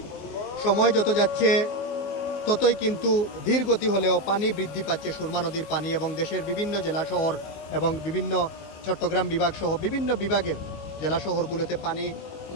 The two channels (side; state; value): right; late; 19 ms